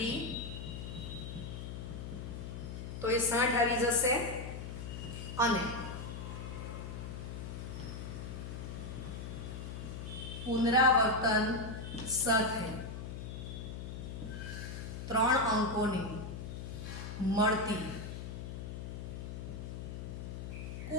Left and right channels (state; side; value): noise; left; hum, 7 dB below the sound